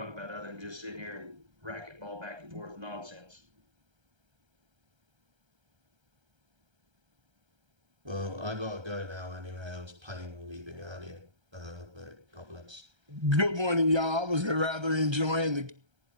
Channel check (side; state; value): left; late; 1.3 ms